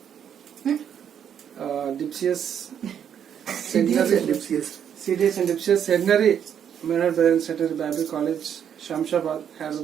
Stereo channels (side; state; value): left; quieter; 8.7 dB